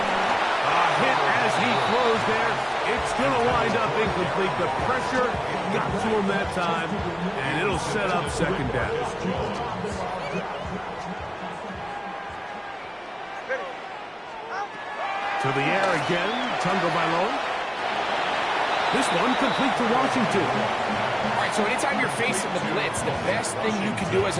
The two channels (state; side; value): identical; both; correlation 1.00